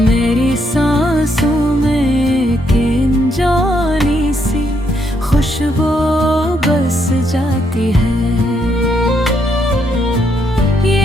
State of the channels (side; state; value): both; normal; correlation 0.75